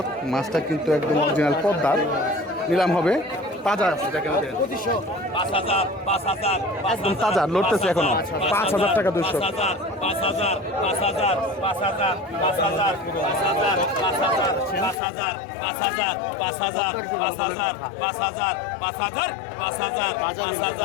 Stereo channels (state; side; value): drops out; right; at 15.0 s